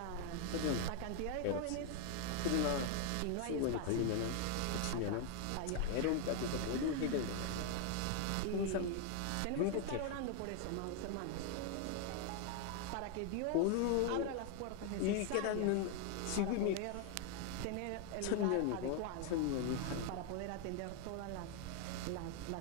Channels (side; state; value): both; different; correlation 0.01